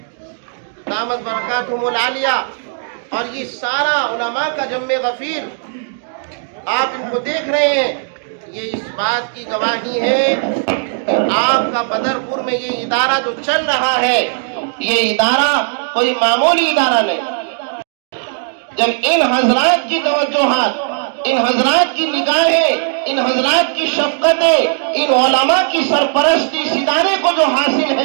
دامت برکاتہم العالیہ، اور یہ سارا علماء کا جمع غفیر، آپ ان کو دیکھ رہے ہیں، یہ اس بات کی گواہی ہے کہ آپ کا بدرپور میں یہ ادارہ جو چل رہا ہے، یہ ادارہ کوئی معمولی ادارہ نہیں۔ جب ان حضرات کی توجہات، ان حضرات کی نگاہیں، ان حضرات کی شفقتیں، ان علماء کی سرپرستی اس ادارے کو جو حاصل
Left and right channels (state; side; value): silent; left; digital silence